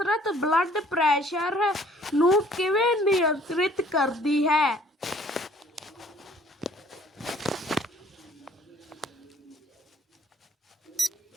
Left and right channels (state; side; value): normal; both; correlation 0.56